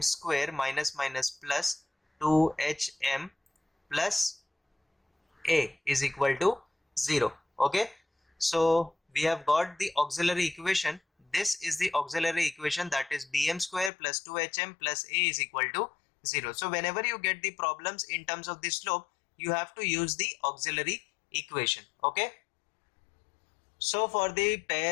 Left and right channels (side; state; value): right; drops out; at 13.9 s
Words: square minus minus plus 2hm plus a is equal to 0. Okay, so we have got the auxiliary equation. This is the auxiliary equation, that is bm square plus 2hm plus a is equal to 0. So whenever you get the problems in terms of the slope, you have to use the auxiliary equation. Okay, so for the